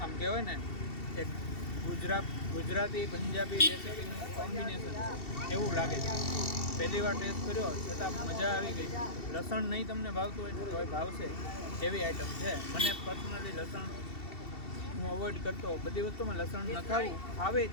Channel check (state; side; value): late; right; 2.7 ms